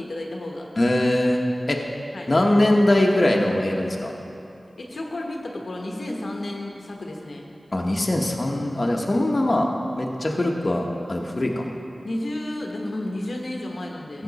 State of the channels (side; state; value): both; normal; correlation 0.98